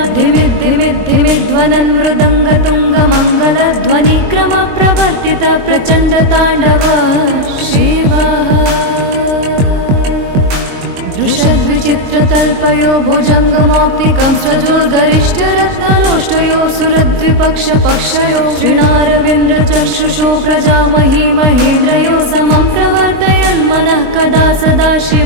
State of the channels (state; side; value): late; left; 22 ms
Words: भविभ्रमभ्रमद्भुजङ्गमश्वसाद्विनिर्गमत्करालभालहव्यवाधिमिद्धिमिद्धिमिध्वनन् मृदङ्गतुङ्गमङ्गलध्वनिक्रमप्रवर्तित प्रचण्डताण्डवः शिवः। दृशद्विचित्रतल्पयो भुजङ्गमौक्तिकं सजोर्गरिष्ठरत्नलोष्टयो सुरद्विपक्षपक्षयो श्रीणारविन्द्रचक्षुषो प्रजामही महेन्द्रयो समं प्रवर्तयन् मनः कदा सदा